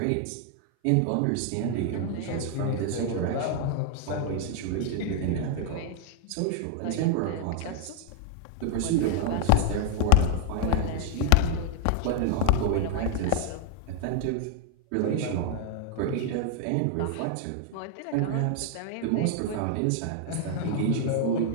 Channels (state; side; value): different; both; correlation 0.00